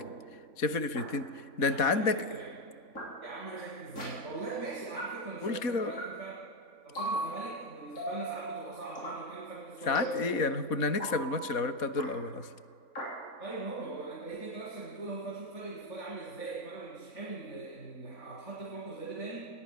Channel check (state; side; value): late; right; 3.6 ms